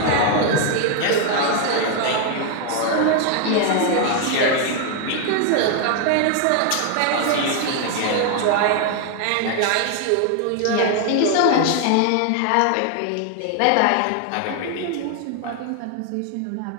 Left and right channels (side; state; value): both; different; correlation 0.00